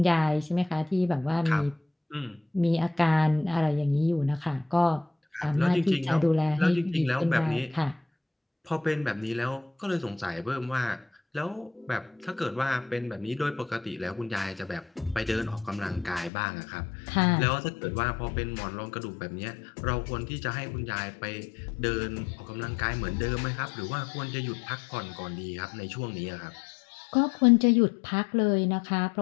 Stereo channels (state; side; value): drops out; right; at 16.3 s